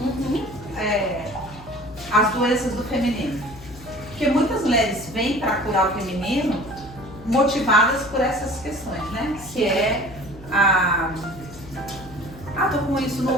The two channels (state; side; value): noise; left; hum, 18 dB below the sound